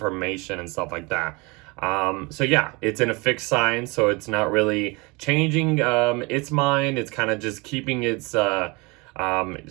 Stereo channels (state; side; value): quieter; left; 26.8 dB